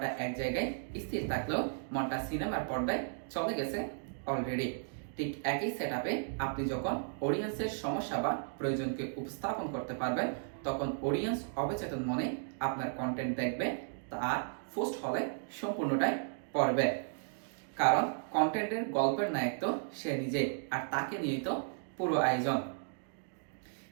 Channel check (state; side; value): silent; left; digital silence